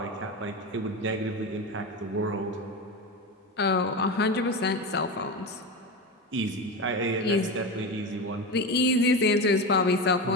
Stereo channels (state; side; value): normal; both; correlation 0.21